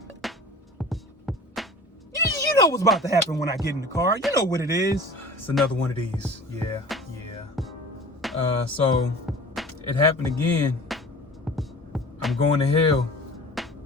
You know what's about to happen when I get in the car. You know what it is. It's another one of these. Yeah. So it happened again. I'm going to hell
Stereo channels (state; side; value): normal; both; correlation 0.41